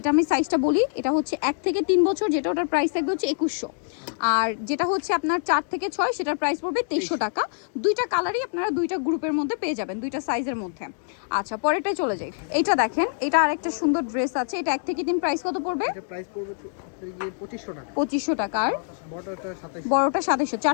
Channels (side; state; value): right; silent; digital silence